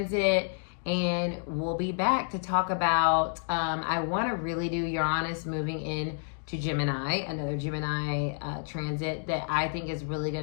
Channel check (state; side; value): silent; right; digital silence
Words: And we'll be back to talk about, I want to really do Uranus moving in to Gemini, another Gemini transit that I think is really